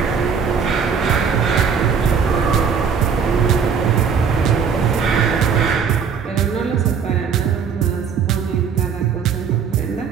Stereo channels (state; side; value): quieter; left; 6.4 dB